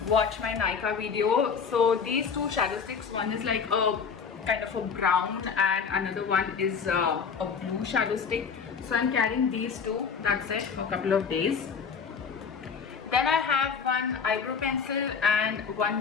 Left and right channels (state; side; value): quieter; right; 6.1 dB